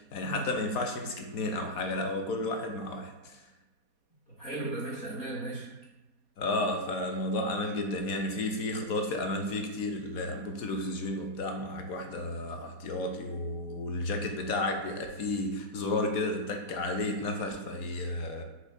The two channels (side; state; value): right; late; 4.2 ms